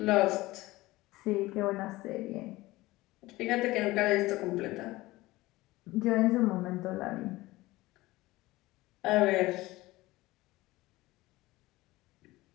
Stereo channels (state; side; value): quieter; right; 19.1 dB